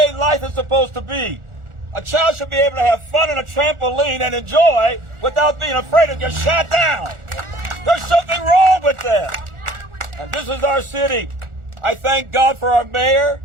life is supposed to be. A child should be able to have fun on a trampoline and enjoy without being afraid to get shot down. There's something wrong with that. And this is our city. I thank God for our mayor.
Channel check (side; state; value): left; late; 1.4 ms